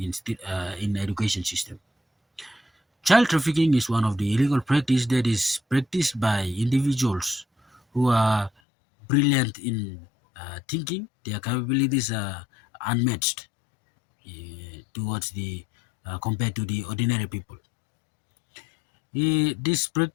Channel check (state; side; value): drops out; right; at 8.5 s